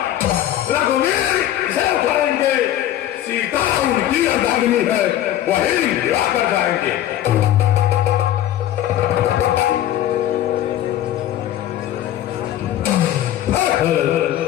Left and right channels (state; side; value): quieter; right; 12.5 dB